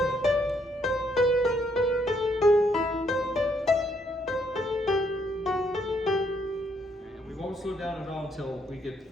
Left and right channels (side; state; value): both; normal; correlation 0.72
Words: and we won't slow down at all until we get